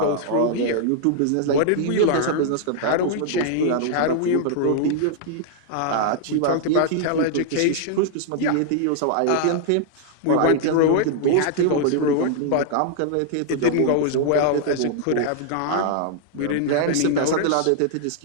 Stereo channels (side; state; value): both; different; correlation -0.01